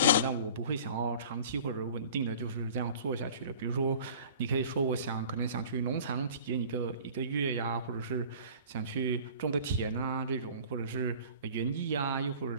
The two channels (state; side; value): inverted; both; correlation -0.45